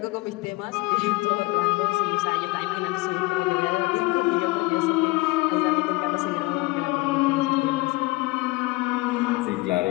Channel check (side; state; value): right; quieter; 22.3 dB